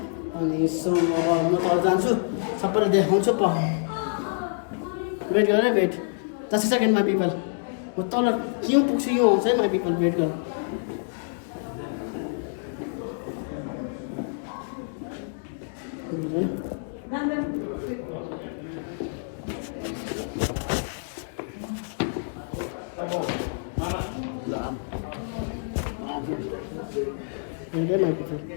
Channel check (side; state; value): right; silent; digital silence